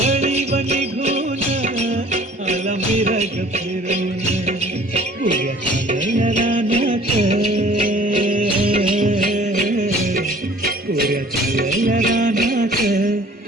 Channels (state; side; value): normal; both; correlation 0.51